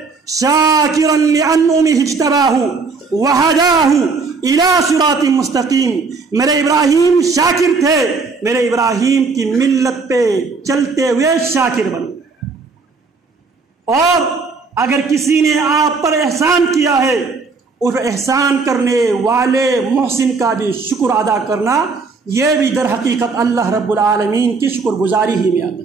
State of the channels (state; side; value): quieter; left; 4.5 dB